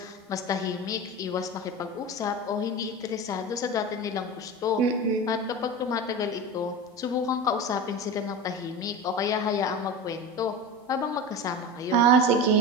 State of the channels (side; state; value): both; normal; correlation 0.26